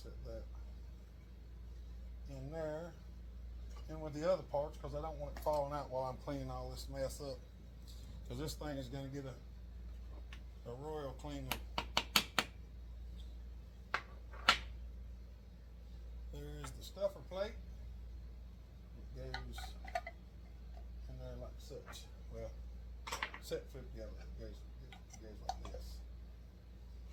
that in there and with the other parts, because I don't want it falling out while I'm cleaning all this mess up, because this thing is going to get a royal cleaning. There is the stuffer plate. It goes in there like such. Well, set flip together. It goes like this.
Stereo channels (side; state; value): both; identical; correlation 1.00